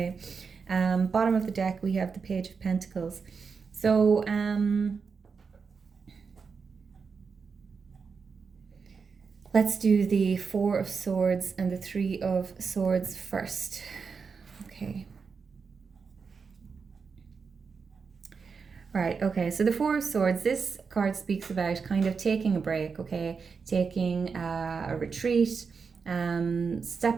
Bottom of the deck, we have the Page of Pentacles. So let's do the Four of Swords and the Three of Swords first. Okay. Right, okay, so the Four of Swords, this card speaks about kind of taking a break, okay? Taking a retreat,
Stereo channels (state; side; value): quieter; left; 5.4 dB